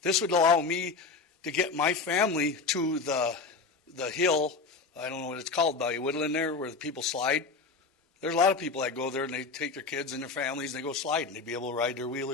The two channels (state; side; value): quieter; right; 4.3 dB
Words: This would allow me to get my family to the hill, I don't know what it's called by Woodland there, where the people slide. There's a lot of people that go there and they take their kids and their families and they go sliding. They'd be able to ride their